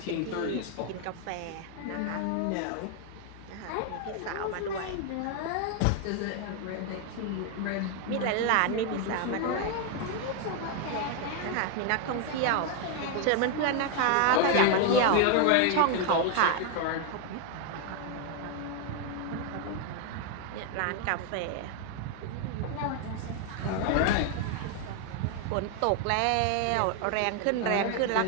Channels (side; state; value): both; different; correlation 0.01